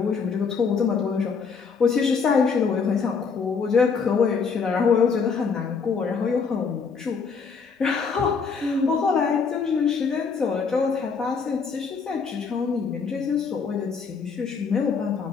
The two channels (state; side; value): quieter; right; 5.5 dB